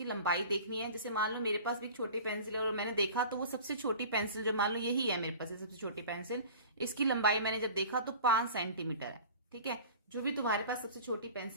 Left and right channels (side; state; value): both; inverted; correlation -0.40